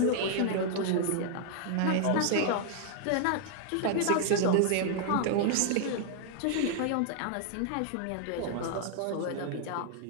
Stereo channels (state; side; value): different; both; correlation 0.00